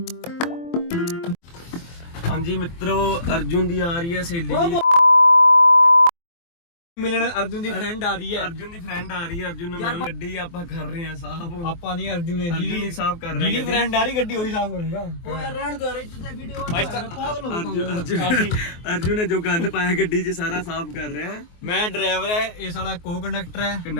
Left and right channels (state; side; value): late; right; 24 ms